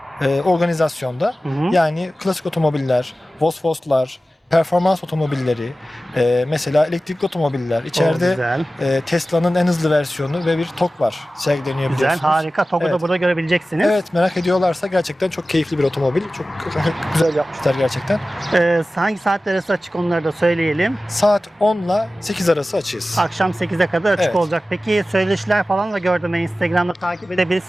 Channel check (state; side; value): normal; both; correlation 0.96